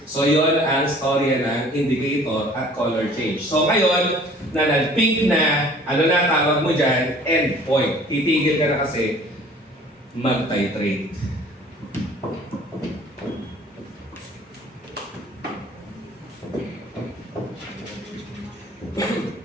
So yun ang storya ng indicator at color change. So ngayon, na nag-pink na, ano na tawag mo dyan? Endpoint. Titigil ka na kasi mag-titrate.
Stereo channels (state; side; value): normal; both; correlation 0.51